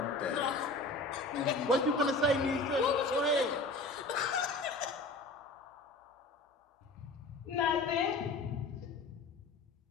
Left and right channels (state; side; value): quieter; right; 3.2 dB